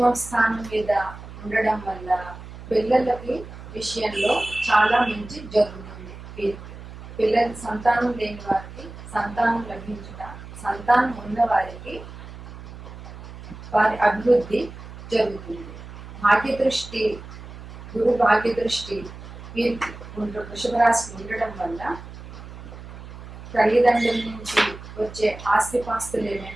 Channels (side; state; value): right; noise; hum, 14 dB below the sound